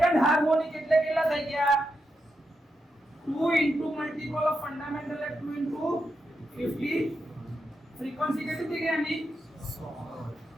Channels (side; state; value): both; normal; correlation 0.85